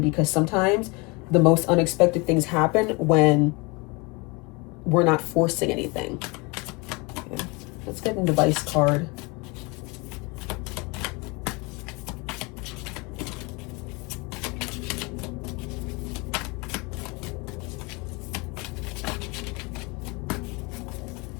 because sometimes the most unexpected things happen when we're not forcing anything. Okay. Let's get an advice card.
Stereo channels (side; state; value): right; quieter; 27.8 dB